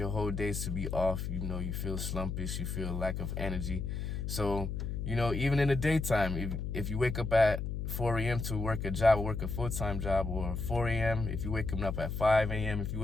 whole days to be off. You feel slumpish, you feel lack of energy. So, even in the daytime, if you wake up at 4 a.m. to work a job, or work a full-time job, or 4 a.m., if you wake up at 5 a.m., if you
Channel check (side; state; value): left; noise; hum, 3 dB below the sound